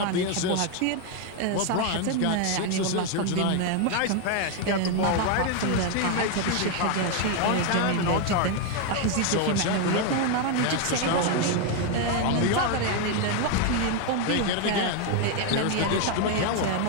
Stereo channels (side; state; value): both; different; correlation 0.01